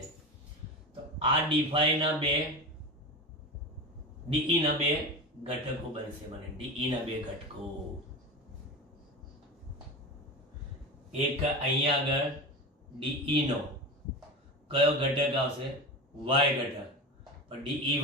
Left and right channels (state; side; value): normal; both; correlation 0.26